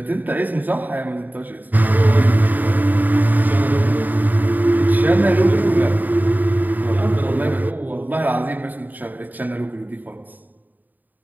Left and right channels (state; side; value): late; left; 0.085 ms